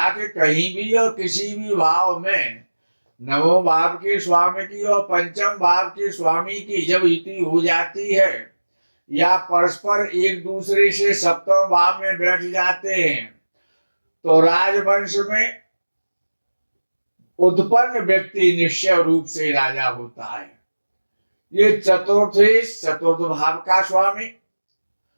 कि कहीं भी और किसी भी भाव में नवम भाव के स्वामी की और पंचम भाव के स्वामी की जब युति हो जाती है या परस्पर एक दूसरे से सप्तम भाव में बैठ जाते हैं, तो राजवंश में उत्पन्न व्यक्ति निश्चय रूप से राजा होता है। ये चतुर्थेश चतुर्थ भाव का स्वामी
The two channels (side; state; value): both; inverted; correlation -1.00